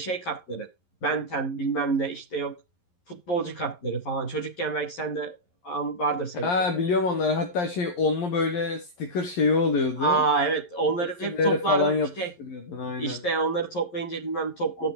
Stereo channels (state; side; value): late; right; 11 ms